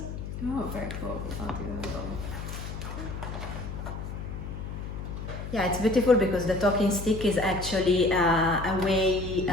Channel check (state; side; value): noise; left; hum, 7 dB below the sound